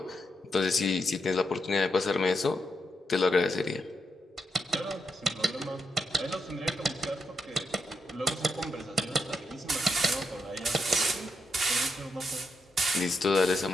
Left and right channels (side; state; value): both; normal; correlation 0.81